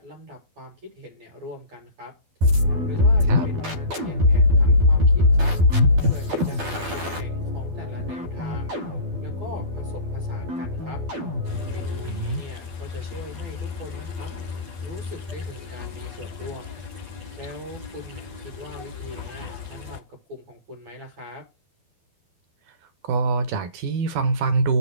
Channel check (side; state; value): left; late; 12 ms